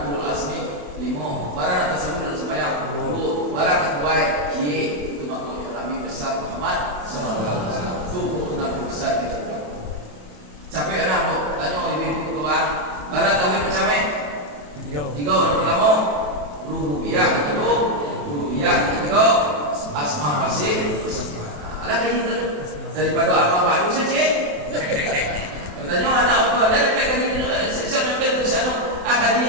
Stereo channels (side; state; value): left; late; 27 ms